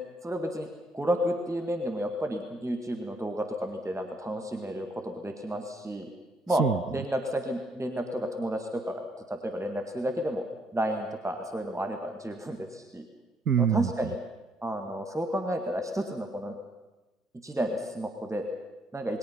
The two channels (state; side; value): normal; both; correlation 0.71